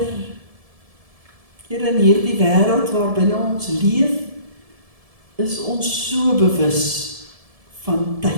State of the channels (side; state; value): left; late; 1.7 ms